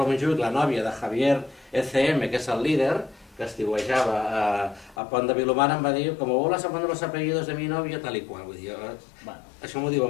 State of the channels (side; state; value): right; drops out; at 5.0 s